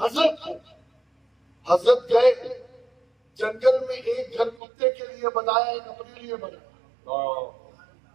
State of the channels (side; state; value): left; drops out; at 4.6 s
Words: حضرت گئے جنگل میں، ایک گھر کتے کے لیے بنایا، ایک اپنے لیے بنایا،